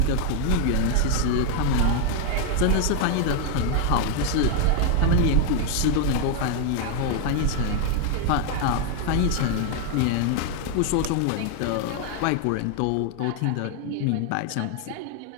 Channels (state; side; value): different; both; correlation 0.01